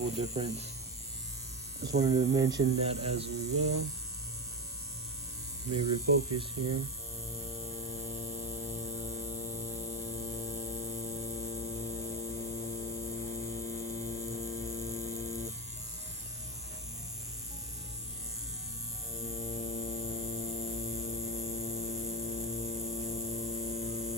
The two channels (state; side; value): normal; both; correlation 0.18